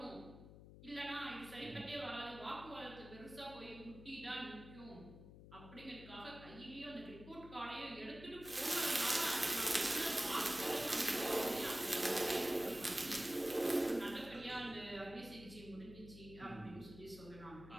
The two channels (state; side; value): noise; left; hum, 15 dB below the sound